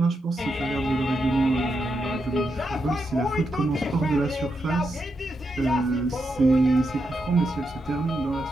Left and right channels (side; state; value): both; normal; correlation 0.84